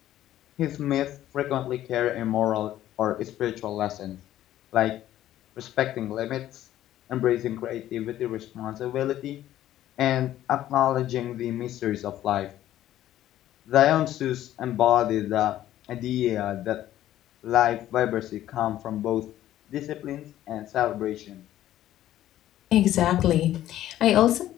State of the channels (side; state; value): right; quieter; 13.0 dB